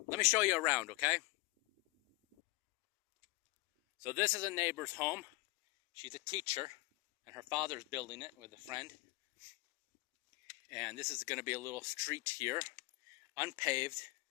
let me show you around, okay? So this is a neighbor's home. She's a teacher, and her father's building it with a friend. And this is going to be a little street here, unpaved,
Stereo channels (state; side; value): quieter; right; 23.2 dB